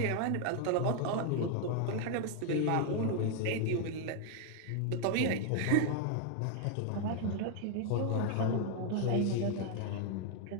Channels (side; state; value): both; different; correlation 0.00